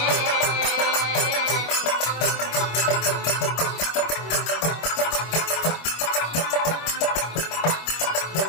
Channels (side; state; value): right; late; 25 ms